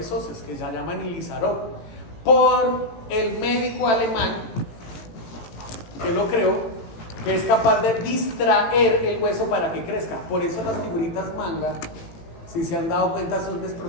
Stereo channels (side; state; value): right; late; 18 ms